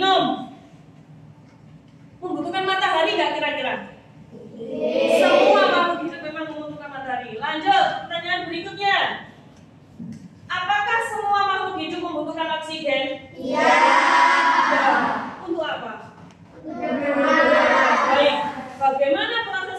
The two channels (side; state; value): both; identical; correlation 1.00